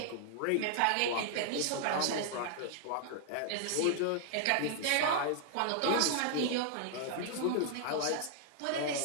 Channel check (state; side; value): different; both; correlation -0.01